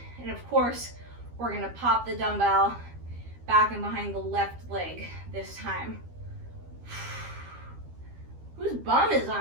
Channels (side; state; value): left; late; 12 ms